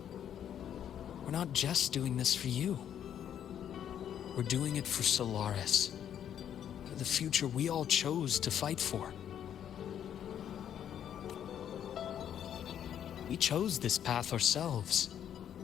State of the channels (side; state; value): right; quieter; 9.7 dB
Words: we're not just doing this for you. We're doing it for Solaris, for the future we all chose to fight for. We chose this path ourselves.